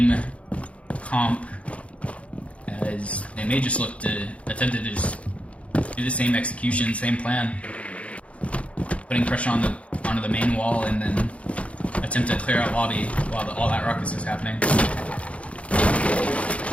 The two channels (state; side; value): late; right; 0.063 ms